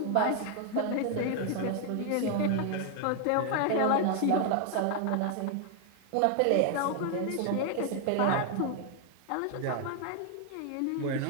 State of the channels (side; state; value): both; different; correlation 0.01